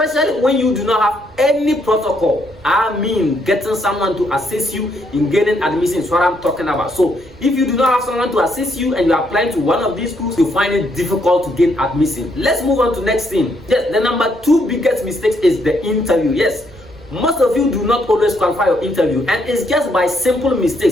when you do not have any protocol. I mean, getting someone to assist you in gaining admission is what I'm talking about. So if you do not have someone to assist you and you are applying to one of these schools, you find it difficult to gain admission. Let's move on to next thing. Yes, the number 2 biggest mistake is the interview. Yes, most of you do not always qualify your interview, and it's just by simple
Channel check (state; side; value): noise; right; rumble, 25 dB below the sound